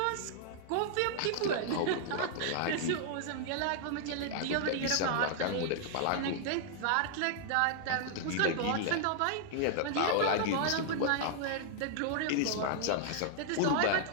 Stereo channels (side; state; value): both; different; correlation -0.01